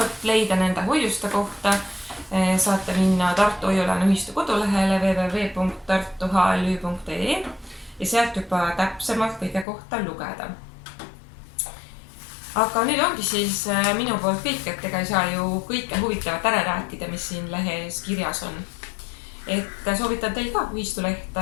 leida nende hoiuste kohta, saate minna Tartu Hoiu-laenuühistu kodulehele www.tartuhlü.ee ja sealt juba täpsemalt kõige kohta lugeda. Aga nüüd ongi siis minu poolt kõik, et ega ei saa ju kõike huvitavat ära rääkida, mis siin lehes kirjas on. Et soovitan teil ka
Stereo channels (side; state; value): right; drops out; at 9.7 s